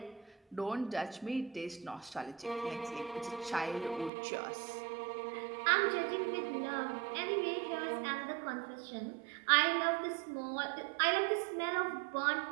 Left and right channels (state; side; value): drops out; left; at 4.1 s